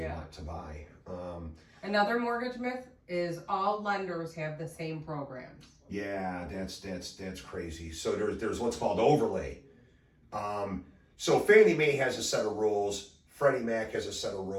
want to buy. Another mortgage myth is all lenders have the same programs. Yeah, that's crazy. So there's what's called overlay. So Fannie Mae has a set of rules, Freddie Mac has a set of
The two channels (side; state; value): both; identical; correlation 1.00